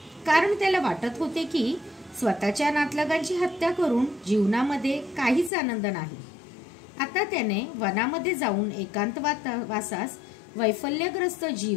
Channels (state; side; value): drops out; right; at 5.5 s